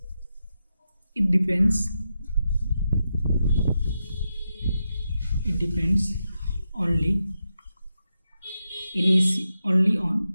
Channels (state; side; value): inverted; both; correlation -0.87